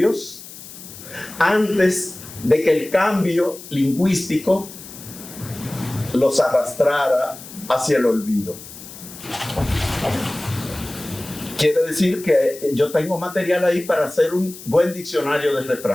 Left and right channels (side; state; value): left; noise; hiss, 15 dB below the sound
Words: antes de que el cambio lingüístico los arrastrara hacia el olvido. Quiere decir que yo tengo material ahí para hacer un buen diccionario de